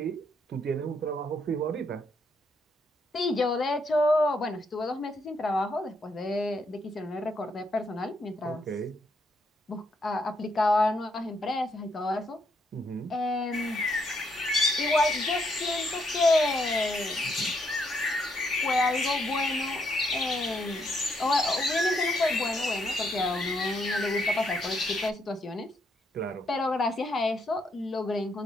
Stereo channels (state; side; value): normal; both; correlation 0.75